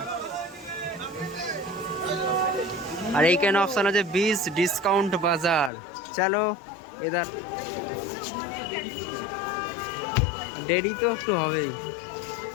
আর এইখানে অপশন আছে 20 ডিসকাউন্ট বাজার। চলো এদার, দেরি তো একটু হবেই।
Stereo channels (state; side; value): drops out; right; at 5.7 s